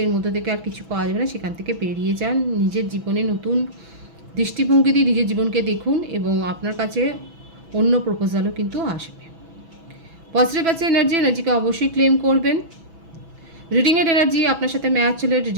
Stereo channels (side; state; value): left; late; 6.1 ms